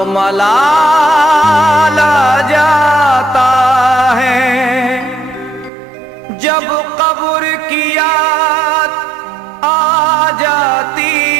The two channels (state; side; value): drops out; left; at 5.7 s